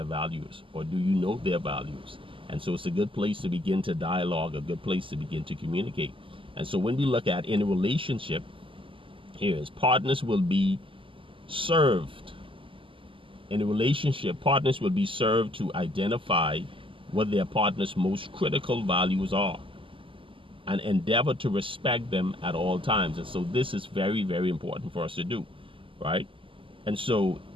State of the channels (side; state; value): left; late; 0.25 ms